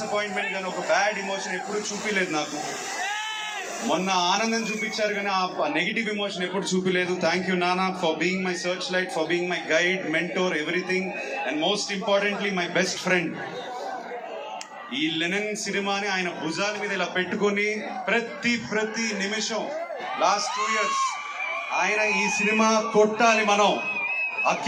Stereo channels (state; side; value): identical; both; correlation 1.00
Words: కానీ, ఒక బ్యాడ్ ఎమోషన్ ఎప్పుడు చూపించలేదు నాకు. మొన్న ఆనందం చూపించారు కానీ ఆ నెగిటివ్ ఎమోషన్ ఎప్పుడు చూపించలేదు. థ్యాంక్ యూ నానా for being my search light, for being my guide, mentor, everything, and most importantly my best friend. ఈ లెనిన్ సినిమాని ఆయన భుజాల మీద ఇలా పెట్టుకొని ప్రతి నిమిషం లాస్ట్ 2 years ఆయన ఈ సినిమా కొట్టాలి, మనం